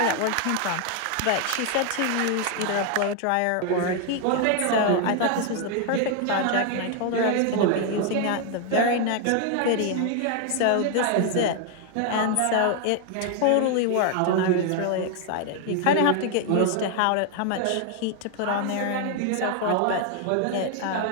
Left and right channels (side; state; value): both; different; correlation 0.00